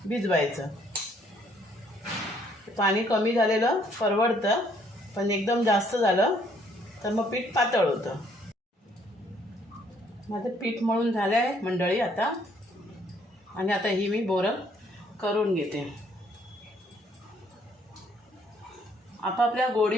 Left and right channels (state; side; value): normal; both; correlation 0.65